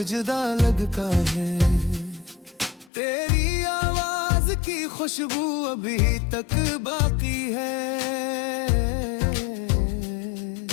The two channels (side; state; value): right; drops out; at 2.9 s